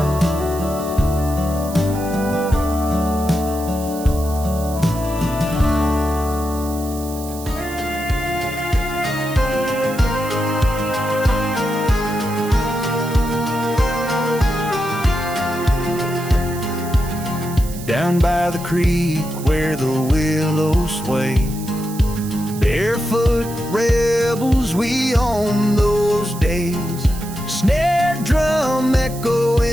Down by the creek where the willows sway, barefoot rebels we on those days. Snare drum echo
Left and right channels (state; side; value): noise; right; hiss, 14 dB below the sound